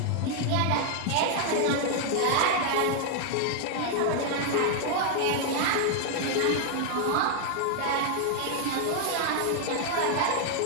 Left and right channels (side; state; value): both; different; correlation 0.00